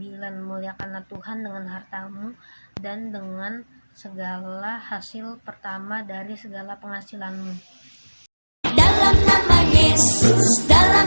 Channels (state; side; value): inverted; both; correlation -1.00